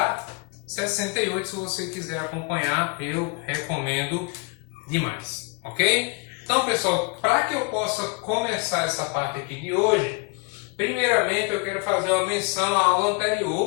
68, se você quiser acompanhar, eu recomendo demais, ok? Então, pessoal, para que eu possa começar essa parte aqui de hoje, primeiramente eu quero fazer uma menção à aula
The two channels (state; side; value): quieter; right; 32.2 dB